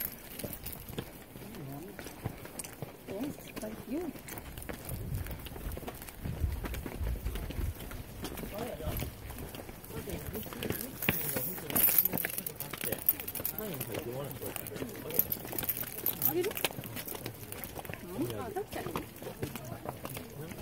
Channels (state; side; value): identical; both; correlation 1.00